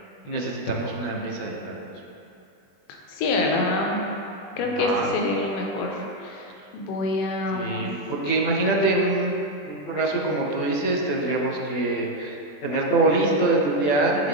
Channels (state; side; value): late; right; 21 ms